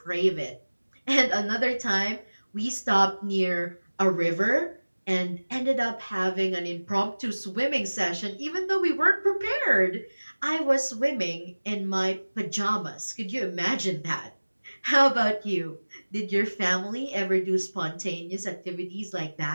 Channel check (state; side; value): inverted; both; correlation -1.00